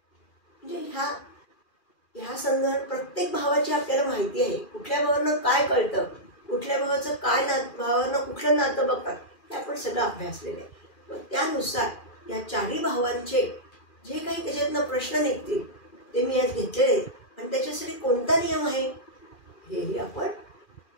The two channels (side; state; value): right; late; 2.4 ms